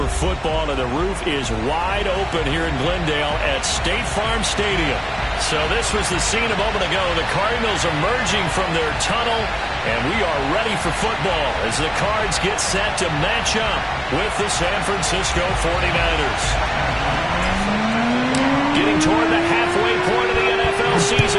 football, and the roof is wide open here in Glendale at State Farm Stadium. So this was the scene a moment ago. The Cardinals emerging from their tunnel, and we are ready for football as the Cards get set to match up with the San Francisco 49ers. Getting toward the halfway point of the NFL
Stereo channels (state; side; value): identical; both; correlation 1.00